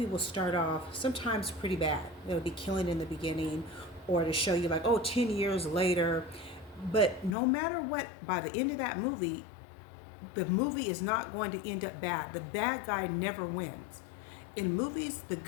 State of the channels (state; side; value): drops out; right; at 7.4 s